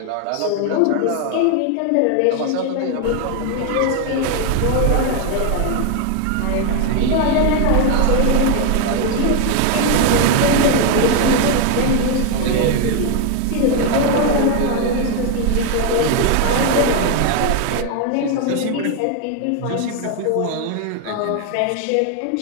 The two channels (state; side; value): different; both; correlation 0.01